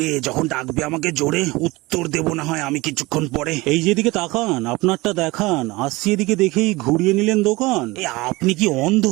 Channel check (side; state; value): left; quieter; 21.8 dB